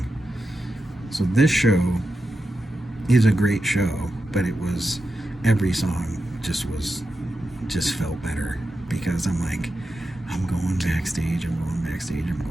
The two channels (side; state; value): both; normal; correlation 0.90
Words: So this show is a great show, but it was every song just felt better because I'm like, I'm going backstage, I'm going backstage, I'm